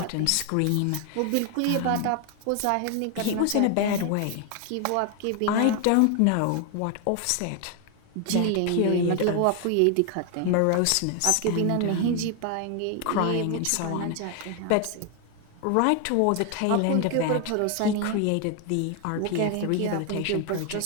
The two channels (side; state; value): both; different; correlation 0.01